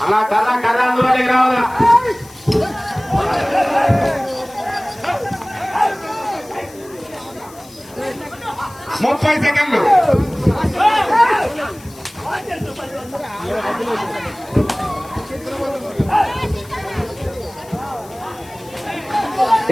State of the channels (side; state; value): left; noise; hiss, 22 dB below the sound